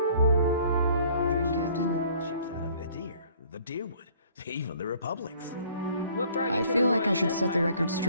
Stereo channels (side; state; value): both; inverted; correlation -0.56